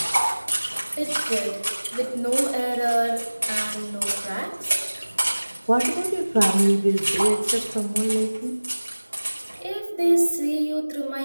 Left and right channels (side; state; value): both; inverted; correlation -1.00